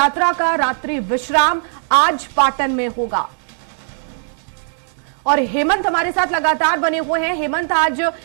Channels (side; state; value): left; silent; digital silence